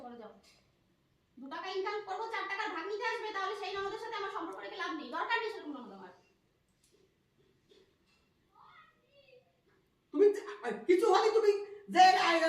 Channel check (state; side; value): identical; both; correlation 1.00